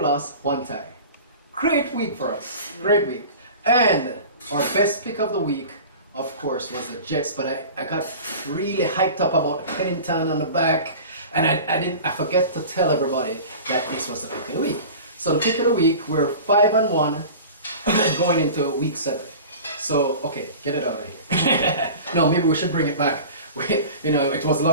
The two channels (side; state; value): both; inverted; correlation -0.37